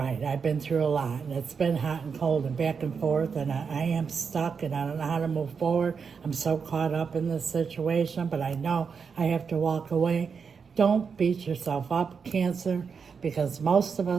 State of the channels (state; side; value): quieter; left; 5.9 dB